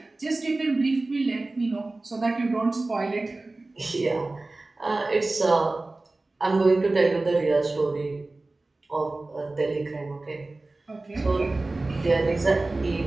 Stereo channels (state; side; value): quieter; left; 3.1 dB